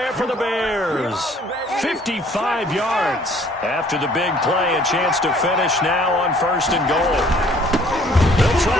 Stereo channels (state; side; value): normal; both; correlation 0.57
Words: for the Bears. 55 yards. After the big play, a chance to finish now on 1st and goal. They'll try